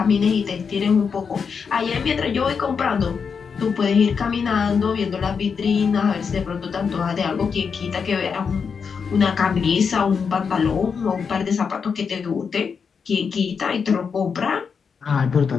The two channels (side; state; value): right; quieter; 6.0 dB